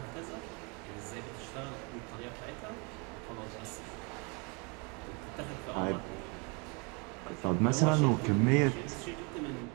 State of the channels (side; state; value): left; quieter; 31.5 dB